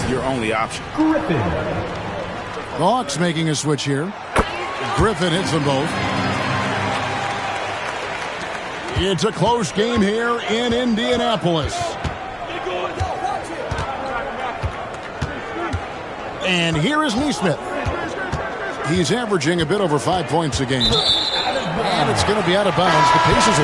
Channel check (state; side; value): identical; both; correlation 1.00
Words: your only option. The Hawks making a switch here. Griffin hits them both. It's a close game here in Indianapolis. And here is Nesmith. He's averaging a bit over 5 points a game. And it's going to be out of bounds. The Pacers